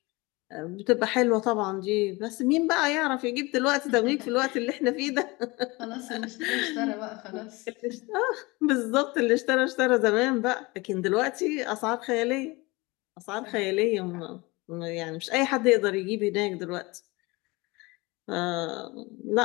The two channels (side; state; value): right; quieter; 23.9 dB